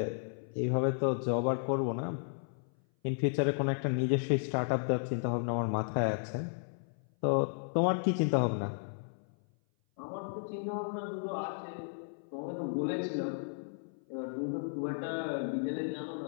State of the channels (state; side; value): silent; right; 55 dB below the other